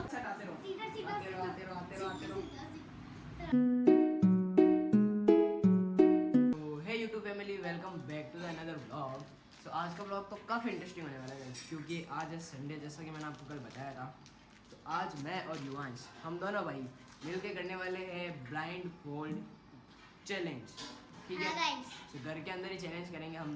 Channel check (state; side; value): identical; both; correlation 1.00